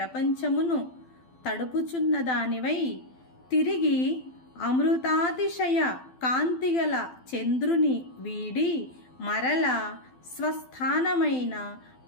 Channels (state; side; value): late; right; 12 ms